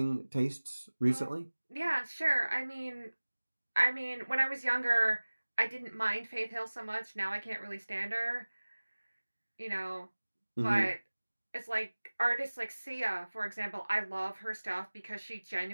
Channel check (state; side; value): inverted; both; correlation -1.00